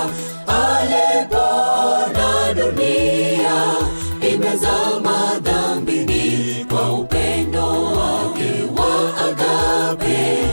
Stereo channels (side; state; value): both; inverted; correlation -1.00